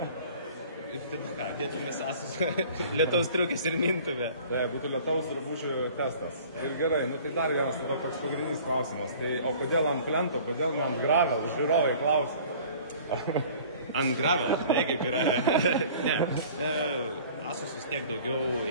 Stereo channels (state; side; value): inverted; both; correlation -0.48